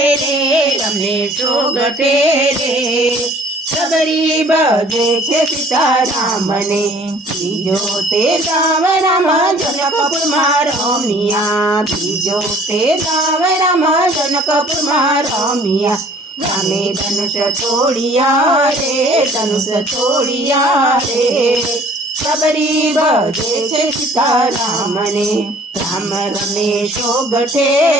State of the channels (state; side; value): normal; both; correlation 0.54